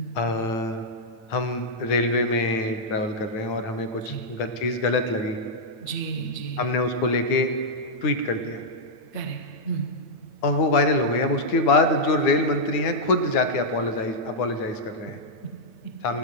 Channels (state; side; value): late; right; 9.1 ms